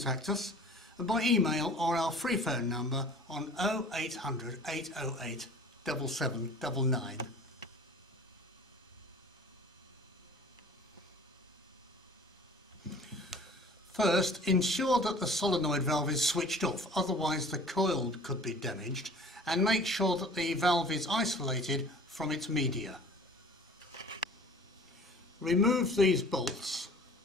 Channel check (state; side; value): normal; both; correlation 0.46